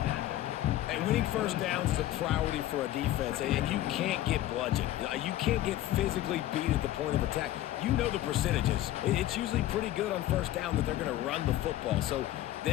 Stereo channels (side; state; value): right; quieter; 14.1 dB